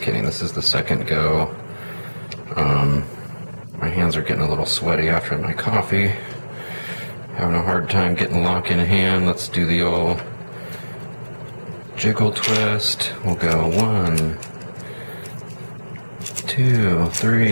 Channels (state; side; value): inverted; both; correlation -1.00